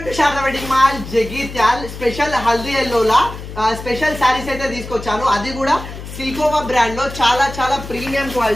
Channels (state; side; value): noise; left; hum, 11 dB below the sound